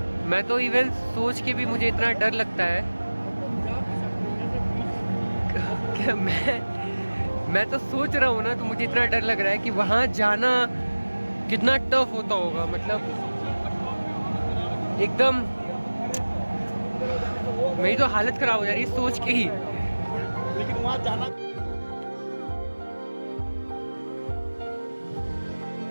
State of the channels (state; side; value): inverted; both; correlation -1.00